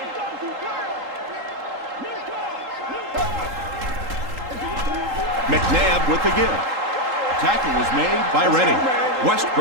McNabb with the give. Tackle was made by Redding.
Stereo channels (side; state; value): left; late; 3.8 ms